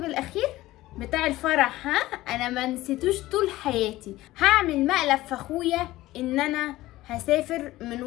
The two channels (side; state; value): right; quieter; 17.0 dB